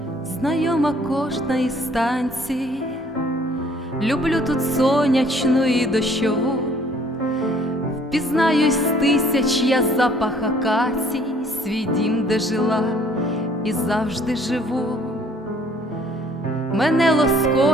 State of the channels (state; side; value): normal; both; correlation 0.59